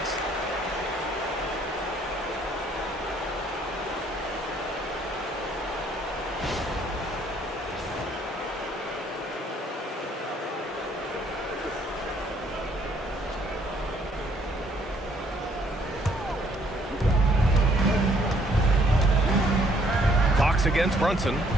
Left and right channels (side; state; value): both; normal; correlation 0.65